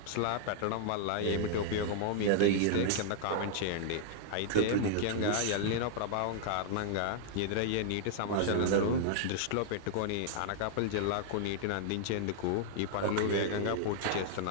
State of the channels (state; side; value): different; both; correlation -0.01